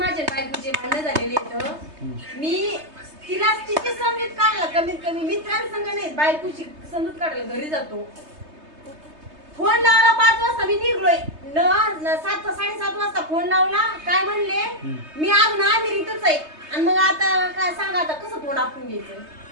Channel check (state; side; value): late; left; 3.2 ms